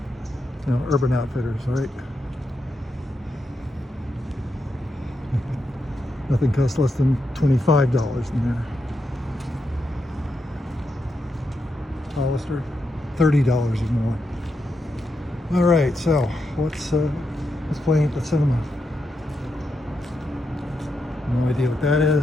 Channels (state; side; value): normal; both; correlation 0.84